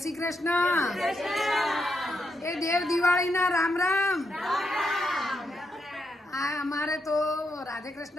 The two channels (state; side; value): normal; both; correlation 0.81